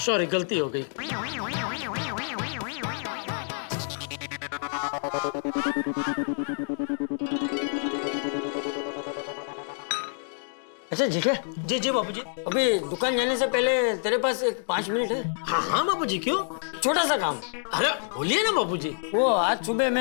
सॉरी, गलती हो गई। अच्छा जेठिया। जी बाबूजी। अभी दुकान जाने से पहले तेरे पास एक 5 मिनट है? हाँ बाबूजी, क्यों? छोटा सा काम। अरे बोलिए ना बाबूजी। वो आज सुबह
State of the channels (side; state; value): right; silent; digital silence